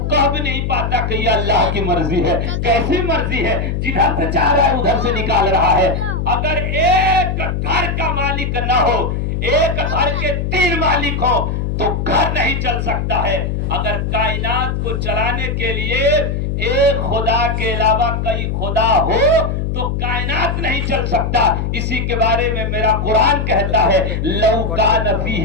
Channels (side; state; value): left; noise; hum, 1 dB below the sound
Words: कह भी नहीं पाता कि ये अल्लाह की मर्जी है। कैसी मर्जी है? जिधर से चाह रहा है उधर से निकाल रहा है। अगर एक घर का मालिक न हो, एक घर के 3 मालिक हो तो घर नहीं चल सकता है। अगर कायनात को चलाने के लिए एक खुदा के अलावा कई खुदा हो तो कायनात नहीं चल सकता। इसी के बारे में मेरा कुरान कहता है लौ कान